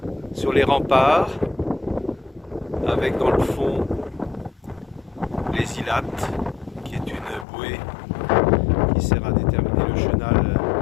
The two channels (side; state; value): right; drops out; at 7.5 s